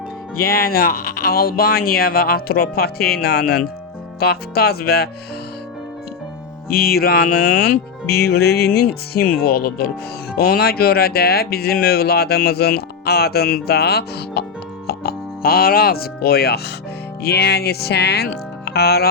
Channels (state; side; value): quieter; right; 5.4 dB